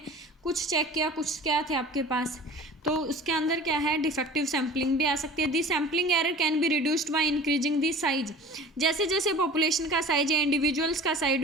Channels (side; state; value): both; normal; correlation 0.41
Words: कुछ चेक किया, कुछ क्या थे आपके पास, तो उसके अंदर क्या है डिफेक्टिव सैम्पलिंग भी आ सकती है। This sampling error can be reduced by increasing the size, जैसे जैसे पॉपुलेशन का साइज या इंडिविजुअल्स का साइज